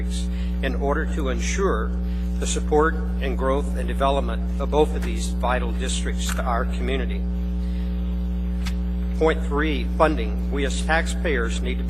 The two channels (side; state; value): both; identical; correlation 1.00